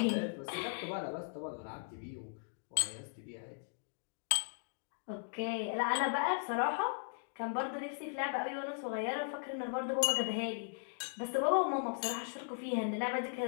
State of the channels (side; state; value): right; silent; digital silence